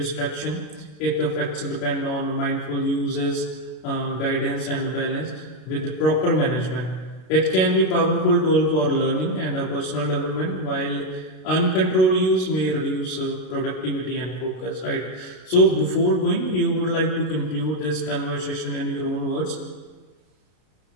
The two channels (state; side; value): late; right; 32 ms